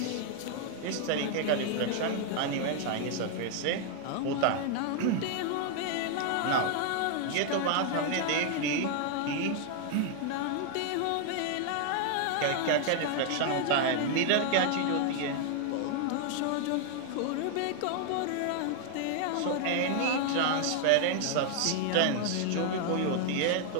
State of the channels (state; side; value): different; both; correlation 0.00